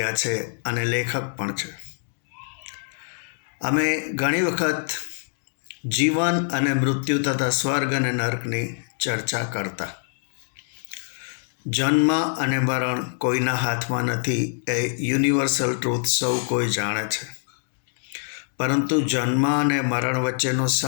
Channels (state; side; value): silent; right; digital silence